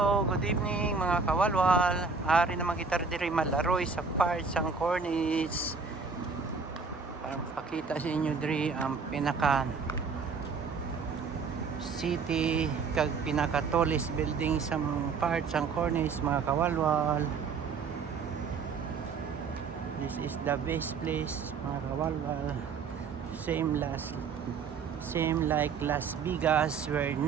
good evening mga kawalwal. Ari naman kita diri malaroy sa part sang cornice. Para pakita sa inyo diri ang pinaka city kag pinaka tallest building sa part sang cornice mga kawalwal. This is the best place mga kawalwal. Same like Las Vegas where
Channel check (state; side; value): quieter; left; 5.2 dB